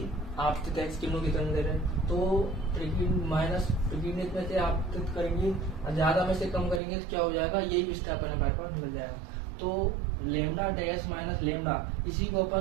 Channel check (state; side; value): drops out; left; at 6.8 s